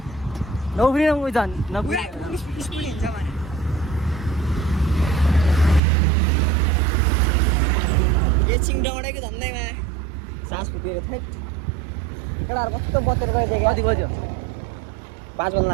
नौफ्रिन उयो झन् स्कुटी हिँड्छ भने एकछिन डौडेको झन्डैमा सास फुकेको थियो केटाहरू कस्तो बतेर गइदियो कति बज्यो 5 बज्न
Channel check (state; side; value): drops out; left; at 5.8 s